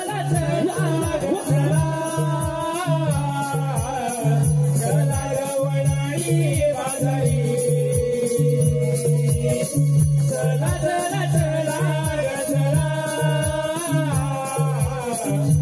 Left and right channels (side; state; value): both; identical; correlation 1.00